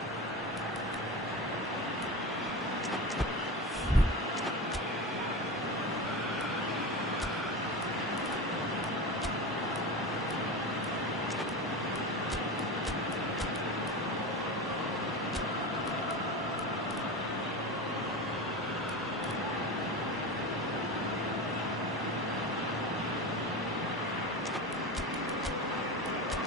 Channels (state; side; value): normal; both; correlation 0.25